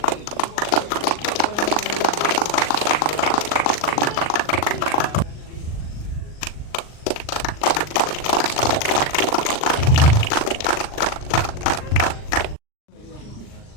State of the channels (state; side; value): late; right; 39 ms